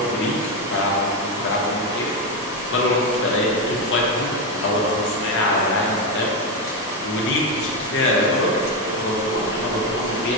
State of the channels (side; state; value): both; normal; correlation 0.09